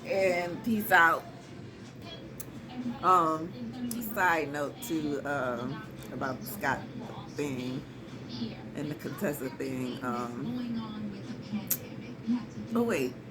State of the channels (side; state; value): both; identical; correlation 1.00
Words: and peace out. Side note too, about the Scott thing and the Contessa thing. Oh wait,